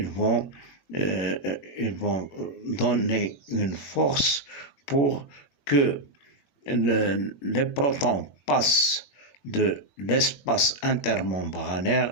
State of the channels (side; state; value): right; late; 21 ms